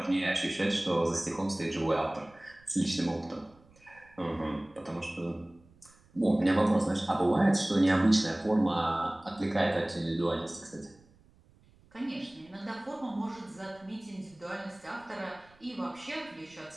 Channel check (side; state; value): right; noise; rumble, 29 dB below the sound